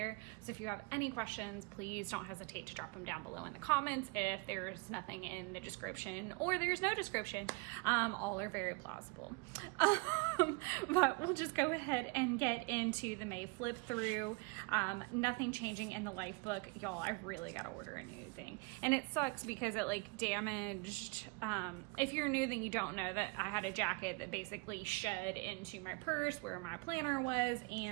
So if you have any questions, please don't hesitate to drop them down below in the comments. If there's nothing in the description or there's no description, all are very plausible. But we'll just go ahead and get into the May flip through. Nothing changing in the life book. Y'all, I really got to order a new thing. And it sucks because it like damaged. If you're new, then you don't know that I had a jacket that basically shed into my purse where my planner was.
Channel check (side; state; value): left; quieter; 28.8 dB